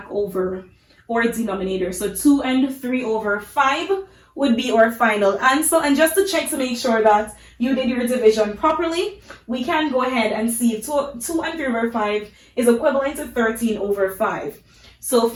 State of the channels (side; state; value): both; identical; correlation 1.00